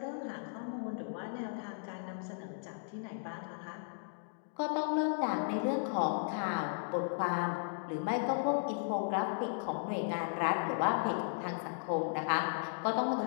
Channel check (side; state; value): right; silent; digital silence